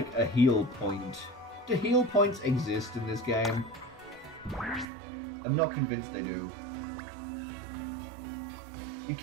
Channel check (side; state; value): left; drops out; at 4.9 s